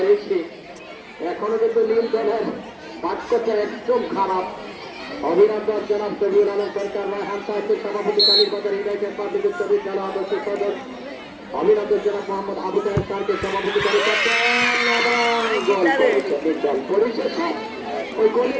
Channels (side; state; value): both; identical; correlation 1.00